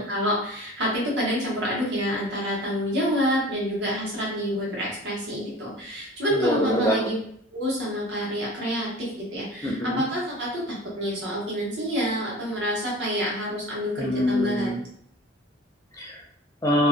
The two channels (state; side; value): normal; both; correlation 0.41